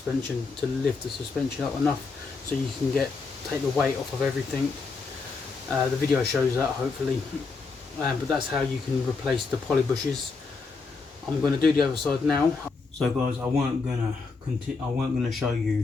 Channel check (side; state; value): right; quieter; 4.4 dB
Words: to lift the suspension up enough so you can take the weight off of everything. The video shows that, hopefully, but that's how you can replace the poly bushes. I'm going to do the other side now. So guys, I weren't gonna show